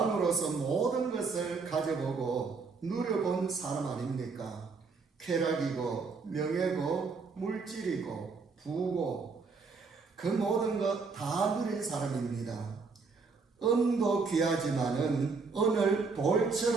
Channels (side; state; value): left; quieter; 4.6 dB